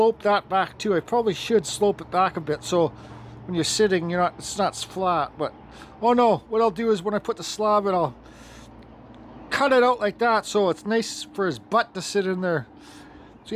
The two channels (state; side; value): identical; both; correlation 1.00